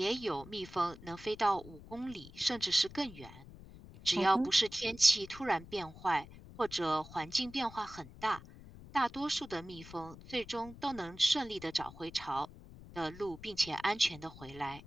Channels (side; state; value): left; noise; rumble, 17 dB below the sound